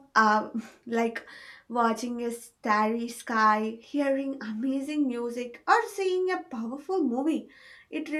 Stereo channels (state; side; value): identical; both; correlation 1.00